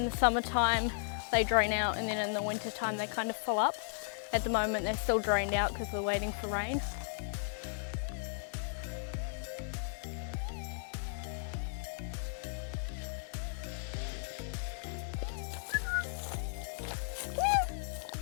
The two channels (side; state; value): right; silent; digital silence